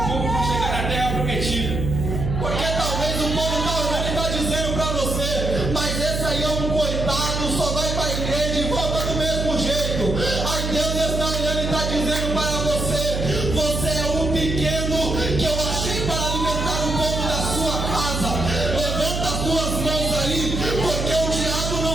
terra prometida. Porque talvez o povo está olhando e está dizendo para você: mas esse aí é um coitado, só vai para a igreja e volta do mesmo jeito. Aí Deus está olhando e está dizendo para você: você é um pequeno que eu achei para alimentar o povo da sua casa. Levanta as suas mãos aí, porque o diabo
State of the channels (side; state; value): right; noise; hum, 2 dB below the sound